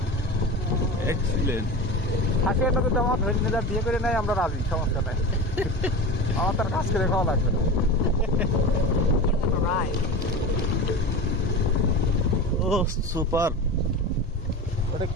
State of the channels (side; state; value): both; normal; correlation 0.29